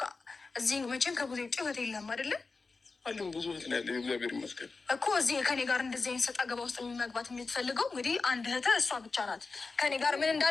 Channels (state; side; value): quieter; right; 4.1 dB